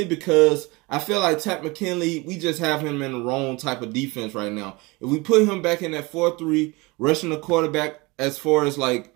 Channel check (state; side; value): quieter; left; 24.7 dB